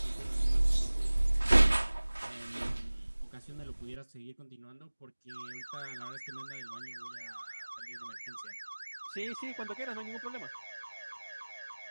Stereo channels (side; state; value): both; inverted; correlation -1.00